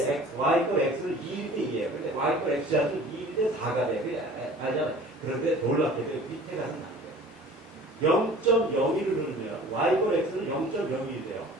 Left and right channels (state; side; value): normal; both; correlation 0.45